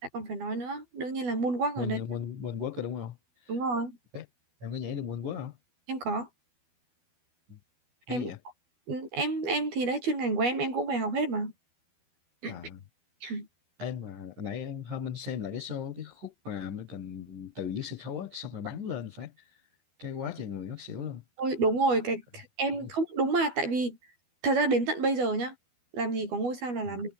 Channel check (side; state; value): left; late; 12 ms